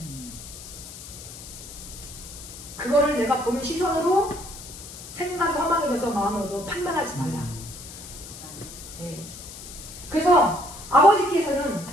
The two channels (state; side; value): noise; left; hiss, 13 dB below the sound